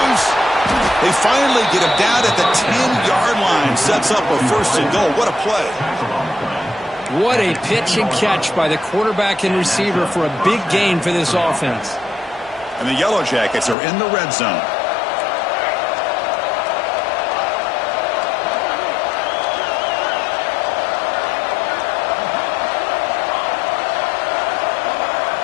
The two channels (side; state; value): right; drops out; at 13.8 s